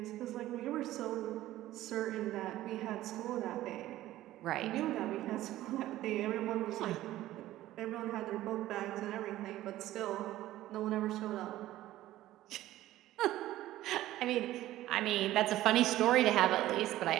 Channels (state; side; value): quieter; left; 14.9 dB